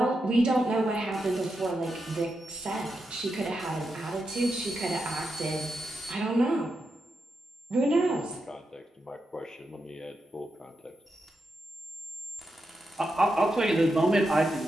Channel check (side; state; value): both; normal; correlation 0.86